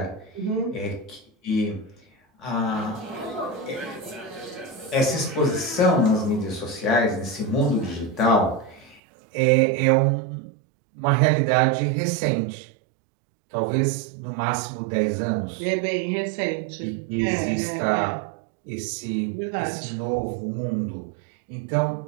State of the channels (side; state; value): left; drops out; at 9.0 s